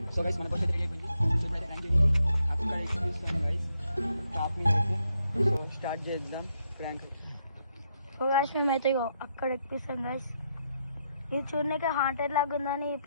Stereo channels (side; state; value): both; inverted; correlation -0.78